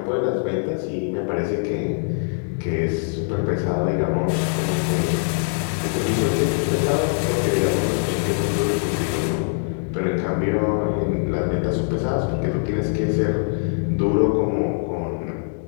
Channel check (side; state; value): right; silent; 64 dB below the other